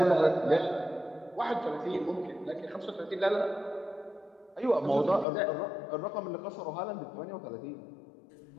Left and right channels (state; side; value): drops out; right; at 5.2 s